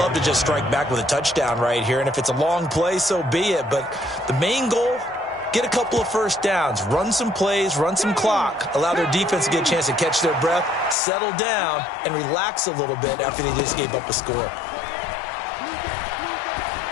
to just strike back with a touchdown right here, and if it's a long play, so be it. But the main goal, get a couple of first downs, run some plays, run some clock, allow their defense to get a chance to catch their breath, settle down, and relax a little bit after they just gave up a score.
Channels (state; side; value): drops out; right; at 11.0 s